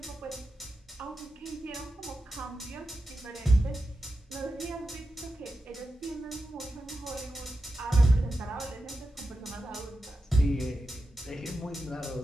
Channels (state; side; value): normal; both; correlation 0.90